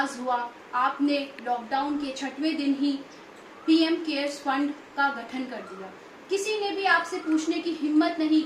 हुआ, आपने लॉकडाउन के 6वें दिन ही पीएम केयर्स फंड का गठन कर दिया। किसी ने भी आपसे पूछने की हिम्मत नहीं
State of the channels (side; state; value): both; identical; correlation 1.00